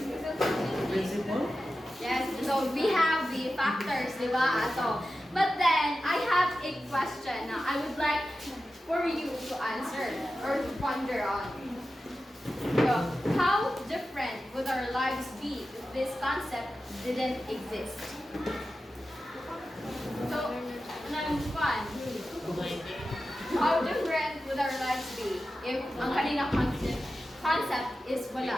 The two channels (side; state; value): both; normal; correlation 0.92